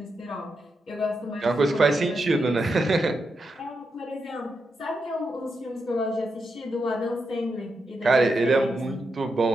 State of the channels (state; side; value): normal; both; correlation 0.85